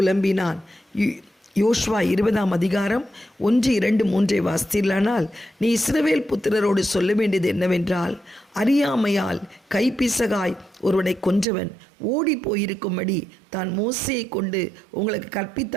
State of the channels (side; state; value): left; drops out; at 11.5 s